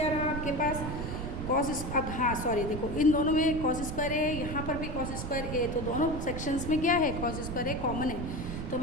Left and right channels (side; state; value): right; noise; rumble, 5 dB below the sound